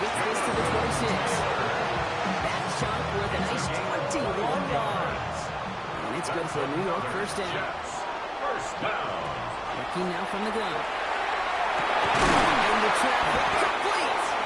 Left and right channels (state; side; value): identical; both; correlation 1.00